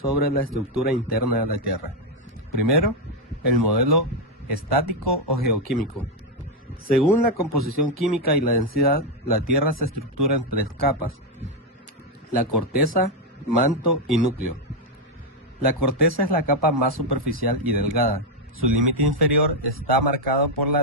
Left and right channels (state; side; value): normal; both; correlation 0.03